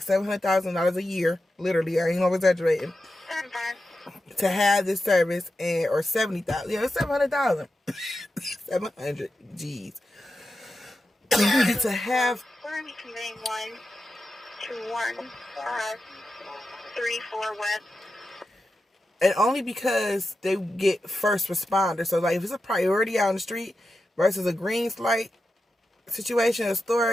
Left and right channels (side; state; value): both; normal; correlation 0.90